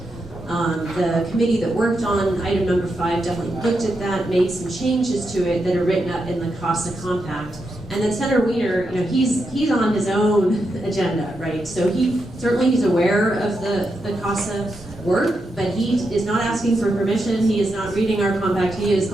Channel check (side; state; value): both; normal; correlation 0.85